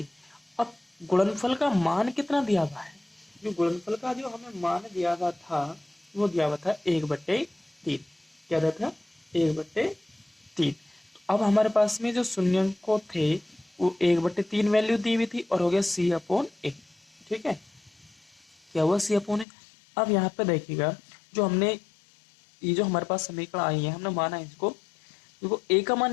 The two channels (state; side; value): drops out; right; at 19.5 s